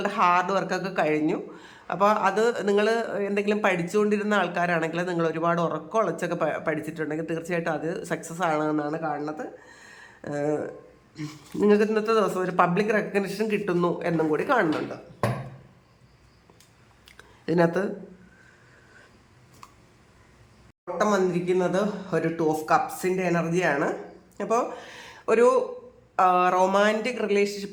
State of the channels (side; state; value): both; identical; correlation 1.00